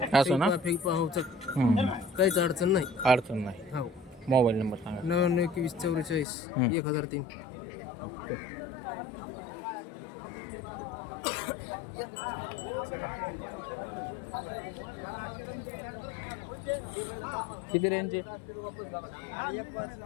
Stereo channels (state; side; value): drops out; right; at 6.2 s